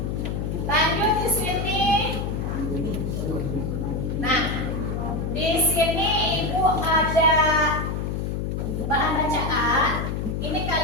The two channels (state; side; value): noise; left; hum, 2 dB below the sound